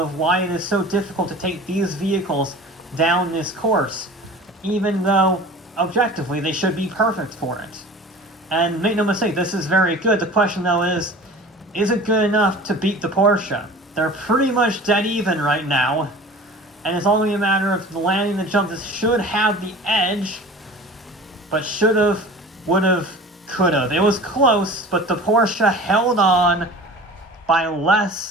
why it is so difficult to take these vehicles down this course, even though, objectively, they should be perfect for it. And make no mistake, this is very good. The question, though, is it good enough to beat the Porsche? They're pretty much dead even right now, and it's only a matter of landing the jump. This should have the edge, but should've, would've, could've. It was close, but the Porsche held on by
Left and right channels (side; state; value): both; normal; correlation 0.40